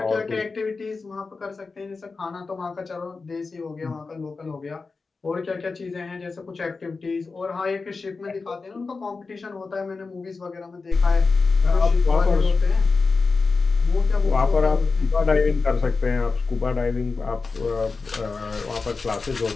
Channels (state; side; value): quieter; right; 4.3 dB